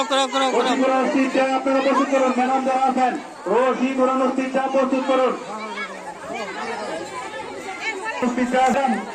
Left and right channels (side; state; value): both; identical; correlation 1.00